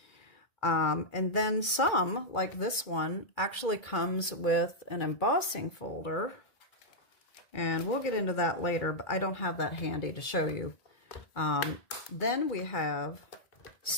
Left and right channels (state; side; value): late; right; 1.9 ms